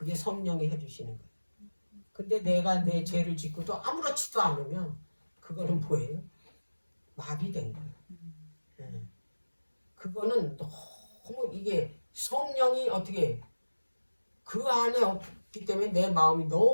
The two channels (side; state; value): both; inverted; correlation -1.00